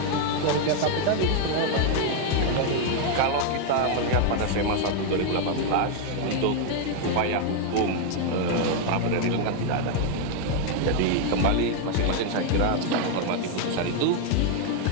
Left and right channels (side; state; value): both; different; correlation 0.01